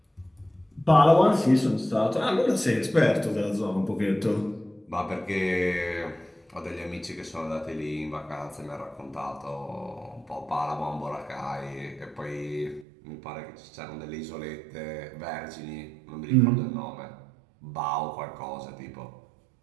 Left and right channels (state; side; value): drops out; left; at 12.9 s